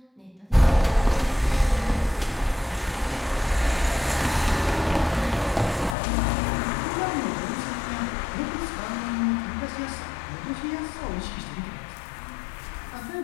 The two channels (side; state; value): right; drops out; at 6.0 s